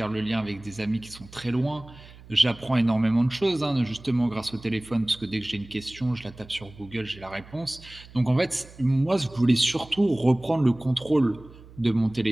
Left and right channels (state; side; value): noise; right; hum, 20 dB below the sound